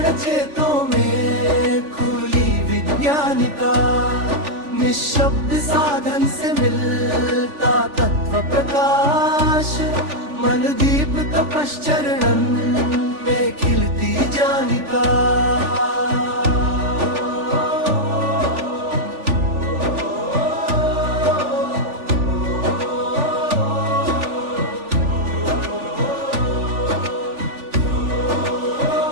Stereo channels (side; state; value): left; late; 3.4 ms